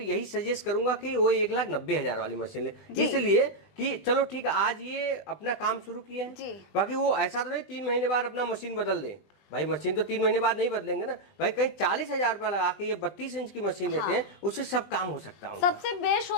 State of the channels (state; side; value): late; right; 20 ms